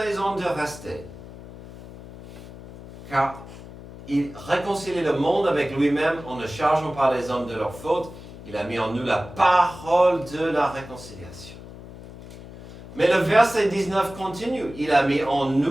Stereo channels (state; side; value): noise; left; hum, 16 dB below the sound